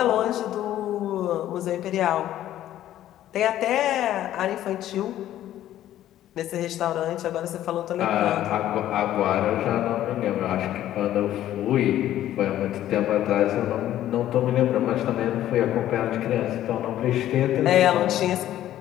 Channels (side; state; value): right; quieter; 12.7 dB